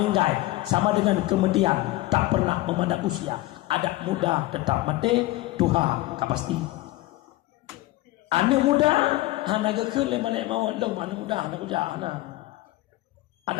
Sama dengan kemudian tak pernah memandang usia. Adat muda tetap mati, Tuhan tak pasti. Anak muda hana gekul balik mau long anak muda anak kerja hana.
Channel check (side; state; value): right; quieter; 18.1 dB